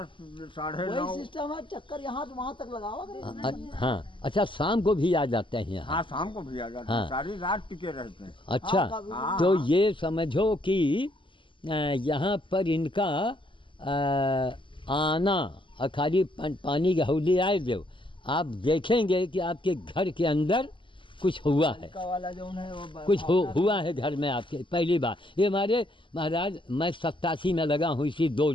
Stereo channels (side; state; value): right; late; 0.24 ms